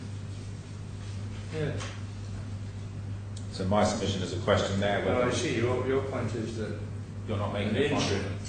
Yes. So my submission is a question there Well, whether I see. Your point is that you're not an making a final. interim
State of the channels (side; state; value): both; identical; correlation 1.00